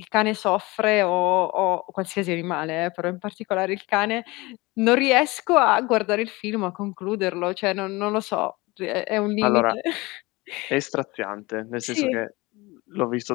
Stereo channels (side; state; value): right; quieter; 22.8 dB